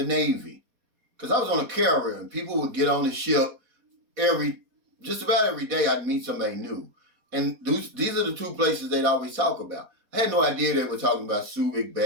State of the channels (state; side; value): late; left; 4.2 ms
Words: Navy. Because I was on a carrier and people would get on the ship just about every day I'd meet somebody new. And these are the two places they'd always talk about. I had no idea they were talking about Subic